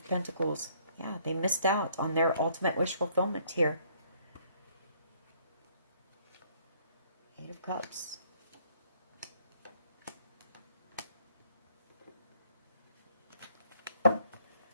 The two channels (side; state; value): both; inverted; correlation -0.64